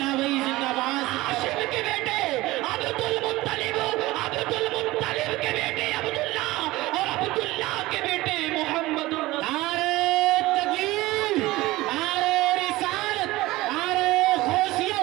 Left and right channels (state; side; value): quieter; left; 18.9 dB